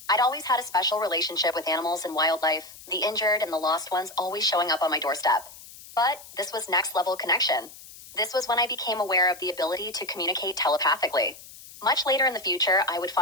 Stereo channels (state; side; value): noise; left; hiss, 18 dB below the sound